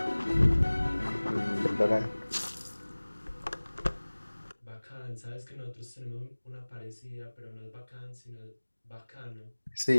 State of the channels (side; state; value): both; inverted; correlation -1.00